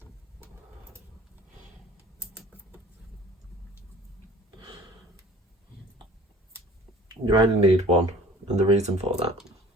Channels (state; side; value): normal; both; correlation 0.48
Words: You only need one, and the reason for that,